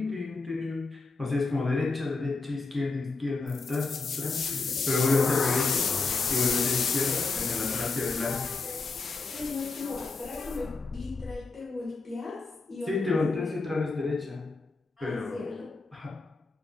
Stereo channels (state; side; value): quieter; right; 3.9 dB